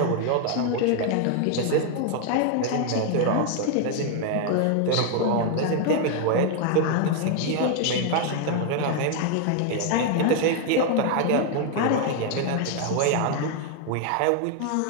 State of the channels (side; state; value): both; different; correlation 0.00